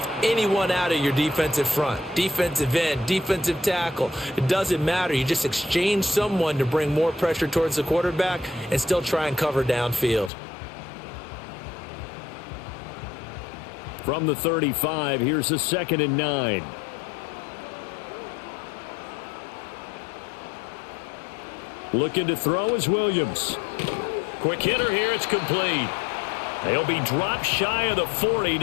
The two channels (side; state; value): right; drops out; at 10.3 s